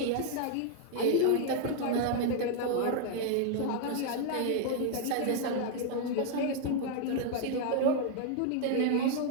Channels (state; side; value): different; both; correlation 0.00